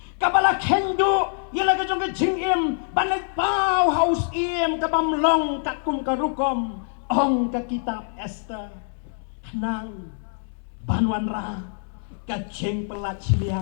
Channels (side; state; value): right; silent; digital silence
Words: kabala kendo yala ka jong ka jing banay pau haus kabam long kakum karukom ong ka kitab Esther nang banwan ra ka jing pelat